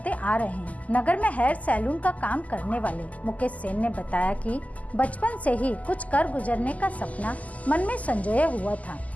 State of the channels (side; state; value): right; late; 0.074 ms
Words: आ रहे हैं। नगर में हेयर सैलून का काम करने वाले मुकेश सेन ने बताया कि बचपन से ही कुछ कर गुजरने का सपना मन में संजोया हुआ था,